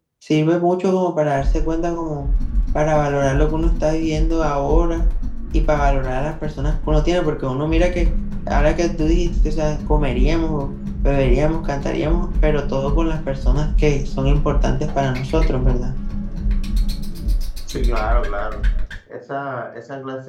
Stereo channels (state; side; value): identical; both; correlation 1.00